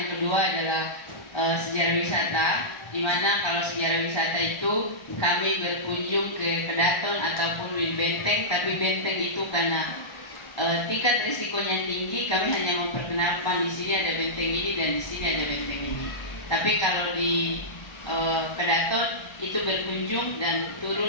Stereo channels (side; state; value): right; late; 1.3 ms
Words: kedua adalah sejarah wisata, dimana kalau sejarah wisata itu kami berkunjung ke Kedaton ataupun bangunin benteng, tapi benteng itu karena tingkat risikonya tinggi, kami hanya memperkenalkan di sini ada benteng ini dan di sini ada benteng ini. Tapi kalau di Kedaton itu berkunjung dan